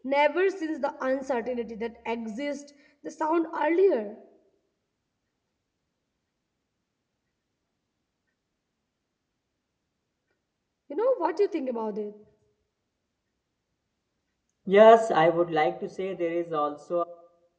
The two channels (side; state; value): both; identical; correlation 1.00